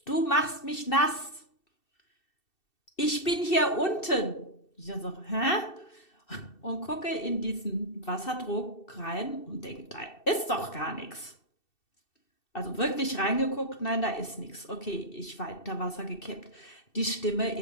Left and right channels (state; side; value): late; right; 2.7 ms